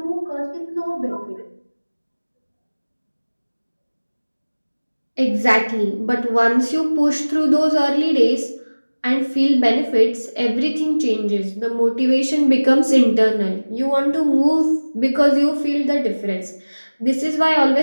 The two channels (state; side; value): inverted; both; correlation -1.00